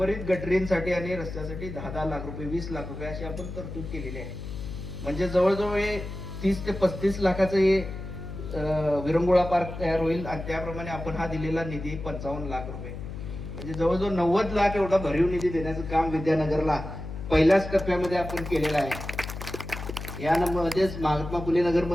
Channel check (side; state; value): left; noise; hum, 9 dB below the sound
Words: गटरींसाठी आणि रस्त्यासाठी 10 लाख रुपये 20 लाख रुपये अशी आपण तरतूद केलेली आहे। म्हणजे जवळजवळ हे 30 ते 35 लाखाचं हे विरंगुळा पार्क तयार होईल आणि त्याप्रमाणे आपण हा दिलेला निधी 55 लाख रुपये म्हणजे जवळजवळ 90 लाख एवढा भरीव निधी देण्याचं काम विद्यानगरला पहिल्याच टप्प्यामध्ये आपण केलेलं आहे। यामध्येच महात्मा फुले नगर